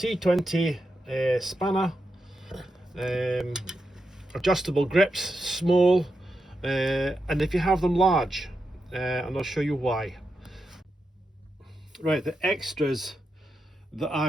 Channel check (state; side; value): normal; both; correlation 0.86